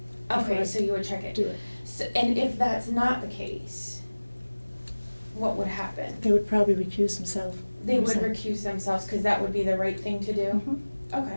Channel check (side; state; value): both; inverted; correlation -1.00